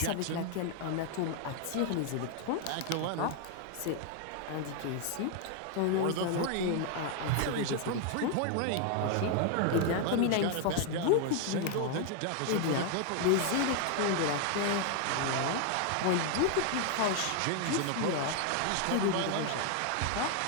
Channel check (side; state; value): both; different; correlation 0.00